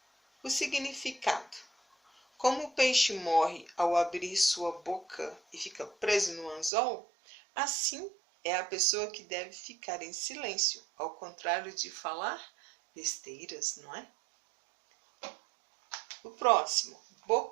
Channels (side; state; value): left; drops out; at 6.7 s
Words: O significado. Como o peixe morre ao abrir sua boca e fica preso no anzol, assim é a pessoa que deve ficar em silêncio, ao contrário de falar besteiras, não é? O próximo,